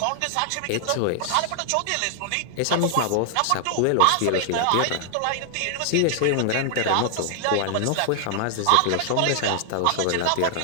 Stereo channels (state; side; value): different; both; correlation 0.00